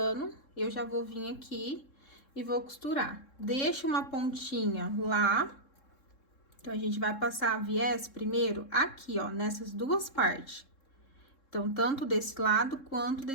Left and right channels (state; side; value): late; right; 3.7 ms